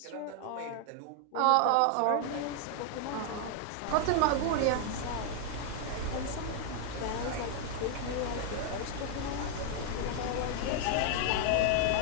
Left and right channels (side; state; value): both; different; correlation 0.00